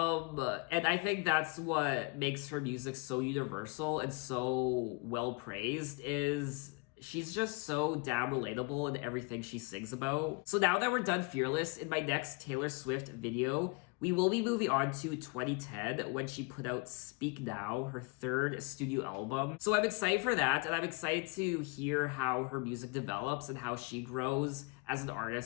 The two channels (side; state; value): right; quieter; 29.3 dB